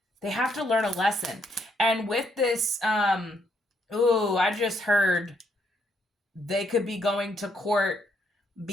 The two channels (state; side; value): normal; both; correlation 0.73